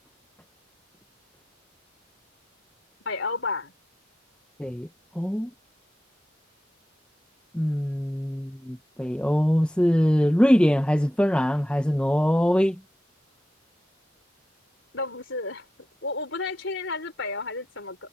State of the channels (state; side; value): normal; both; correlation 0.88